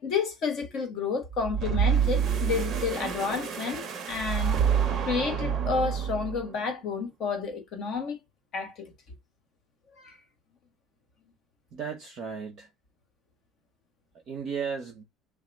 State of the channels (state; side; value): normal; both; correlation 0.42